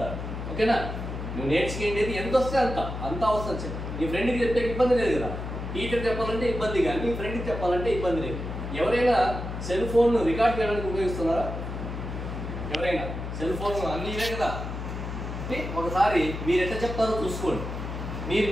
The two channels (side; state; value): left; noise; hum, 6 dB below the sound